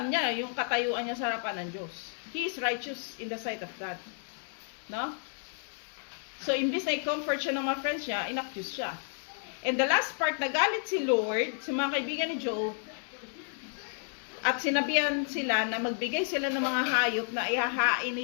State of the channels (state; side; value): silent; right; 56 dB below the other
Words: niya yung katayuan niya sa harapan ng Diyos. He is righteous in the sight of God. No? So, imbis na i-comfort siya ng mga friends niya, inaccuse siya. And the last part, nagalit si Lord sa mga kaibigan ni Job at sinabihan sila na magbigay sila ng mga hayop na ihahain